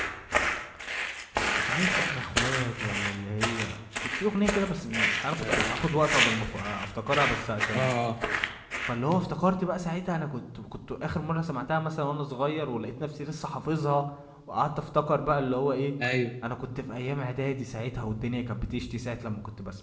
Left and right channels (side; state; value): both; identical; correlation 1.00